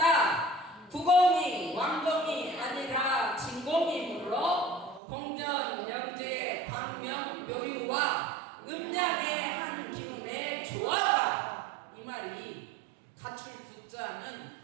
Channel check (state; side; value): drops out; left; at 5.0 s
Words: 구공이 왕공이 아니라 진공이므로 공전 영재의 광명 묘유와 음양의 한 기운의 조화가. 이 말이 갖출 구자는